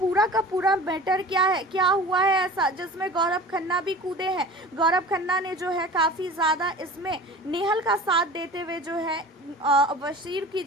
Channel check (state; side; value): normal; both; correlation 0.39